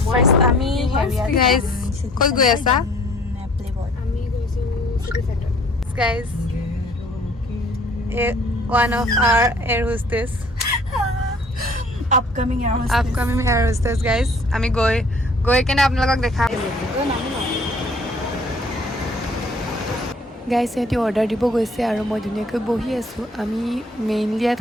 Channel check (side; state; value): both; normal; correlation 0.55